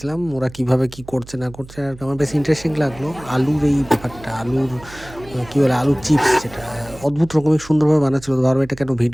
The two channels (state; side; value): noise; right; hum, 19 dB below the sound